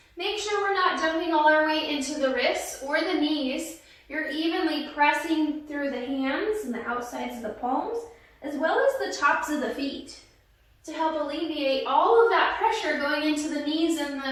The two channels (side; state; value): both; identical; correlation 1.00